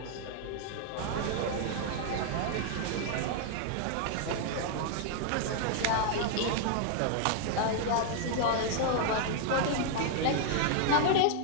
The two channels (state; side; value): different; both; correlation 0.00